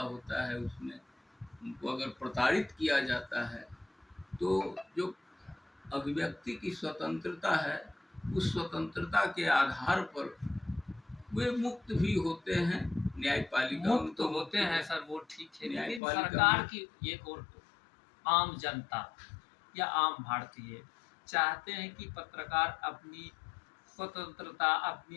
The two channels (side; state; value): right; drops out; at 16.0 s